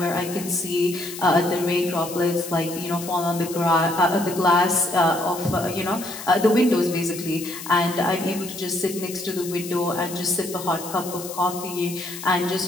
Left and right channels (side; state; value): left; noise; hiss, 11 dB below the sound